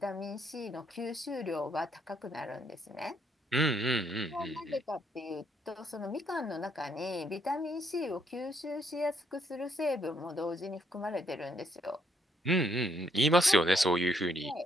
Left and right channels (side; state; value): both; normal; correlation 0.71